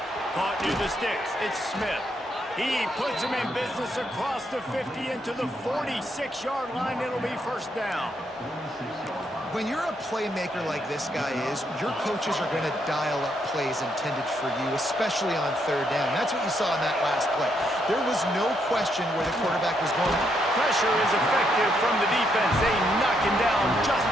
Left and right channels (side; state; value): both; normal; correlation 0.76